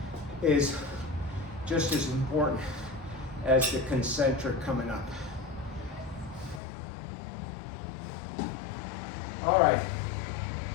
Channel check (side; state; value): right; drops out; at 6.6 s